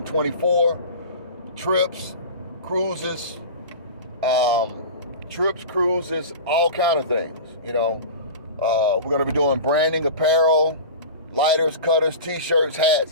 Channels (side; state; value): both; inverted; correlation -0.33